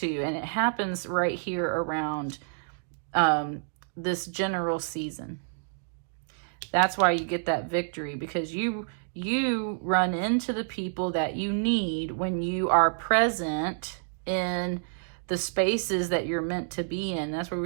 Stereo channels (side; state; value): left; silent; digital silence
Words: and it happens right here around this general season. That's why you get that victory, because you run into the people that you need when you are present in the spaces that you're meant to be in. That's where